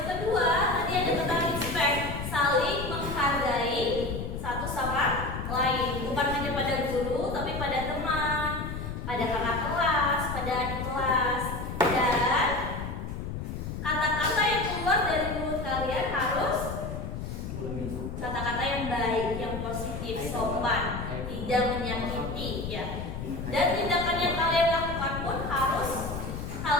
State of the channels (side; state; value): left; noise; rumble, 6 dB below the sound